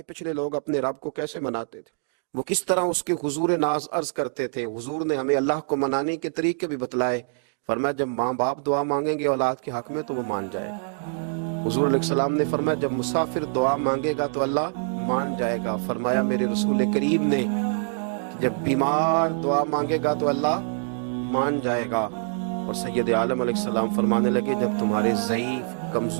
पिछले लोग अपने रब को कैसे मनाते थे, वो किस तरह उसके हुजूर नाज अर्ज करते थे। हुजूर ने हमें अल्लाह को मनाने के तरीके भी बतलाए। फरमाया जब माँ बाप दुआ मांगेंगे औलाद के हक में तो वो मान जाएगा। हुजूर अलैहिस्सलाम ने फरमाया जब मुसाफिर दुआ मांगेगा तो अल्लाह मान जाएगा। फरमाया मेरे रसूल करीम ने कि जब बीमार दुआ मांगेगा तो अल्लाह मान जाएगा। और सैयद आलम अलैहिस्सलाम फरमाने लगे जब तुम्हारे ज़ईफ,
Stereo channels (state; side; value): silent; left; digital silence